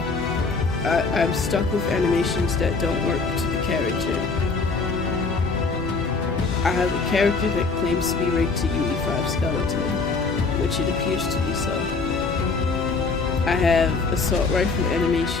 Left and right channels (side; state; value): right; quieter; 4.2 dB